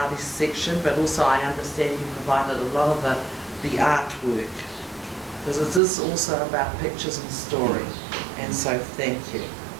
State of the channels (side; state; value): left; drops out; at 5.8 s